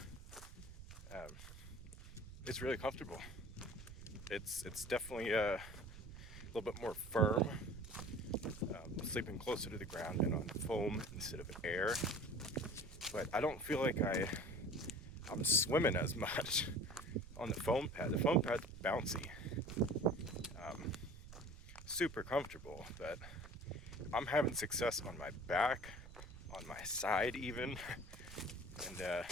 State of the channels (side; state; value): right; noise; rumble, 15 dB below the sound